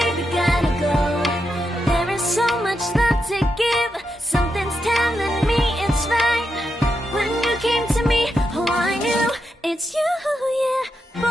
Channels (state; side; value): normal; both; correlation 0.85